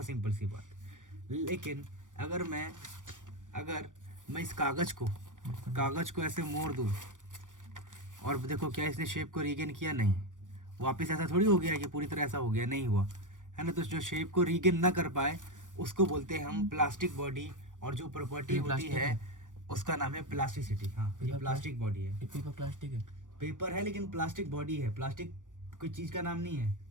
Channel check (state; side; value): late; left; 0.87 ms